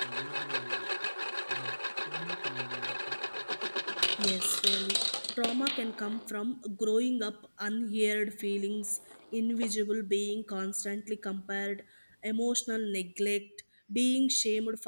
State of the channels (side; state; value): both; inverted; correlation -1.00